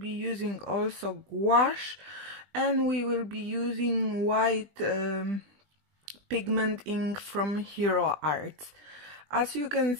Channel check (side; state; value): left; late; 20 ms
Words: using also gouache and we will be using white pigment ink from hero arts. As you can